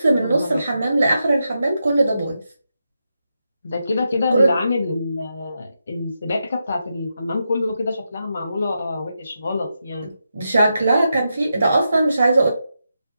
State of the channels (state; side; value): inverted; both; correlation -0.86